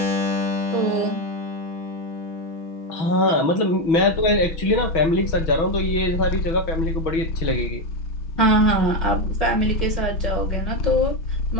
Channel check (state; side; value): late; right; 6.2 ms